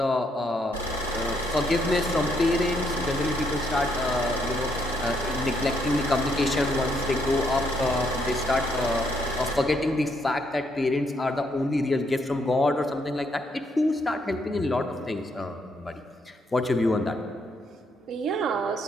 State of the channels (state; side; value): normal; both; correlation 0.74